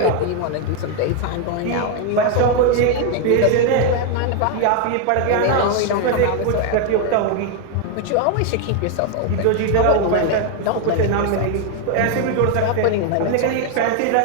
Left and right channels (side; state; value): both; different; correlation 0.01